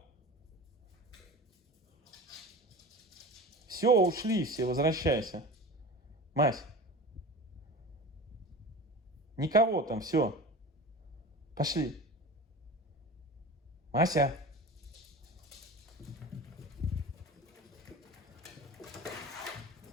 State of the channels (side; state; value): both; normal; correlation 0.33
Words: Все, ушли все, возвращайся. Мась. Никого там, все. Пошли. Мася.